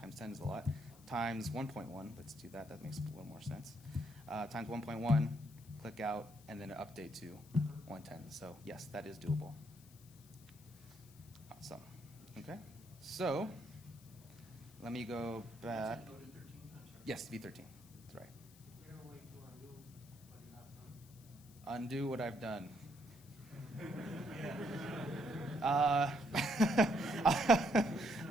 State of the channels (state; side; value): noise; left; hiss, 23 dB below the sound